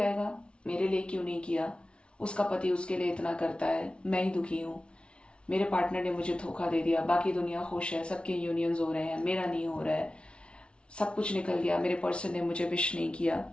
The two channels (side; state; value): right; late; 0.058 ms